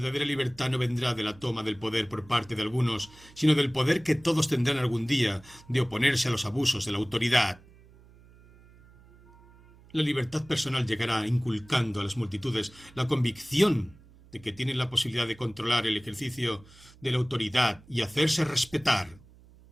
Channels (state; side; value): noise; right; hum, 25 dB below the sound